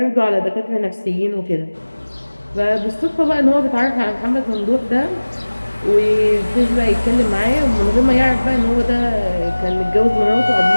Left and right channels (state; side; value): inverted; both; correlation -1.00